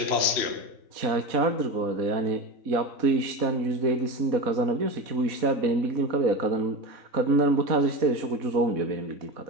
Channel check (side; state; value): left; late; 4.1 ms